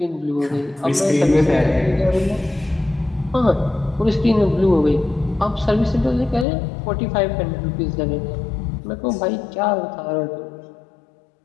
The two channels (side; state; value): right; drops out; at 6.5 s